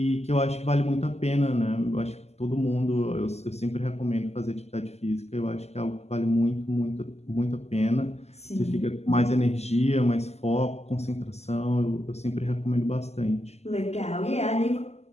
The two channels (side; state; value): right; late; 0.31 ms